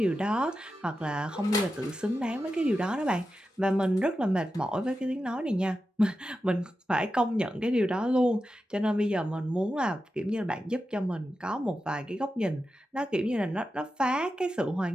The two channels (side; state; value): both; normal; correlation 0.91